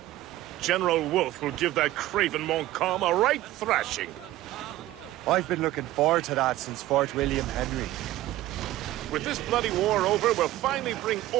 General Wolfe will give that craven Montcalm a right thrashing. I've been looking forward to that since Fort William Henry. With this bloody war over, we'll finally bring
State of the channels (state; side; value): quieter; left; 15.6 dB